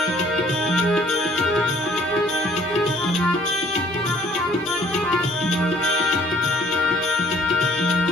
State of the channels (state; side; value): normal; both; correlation 0.58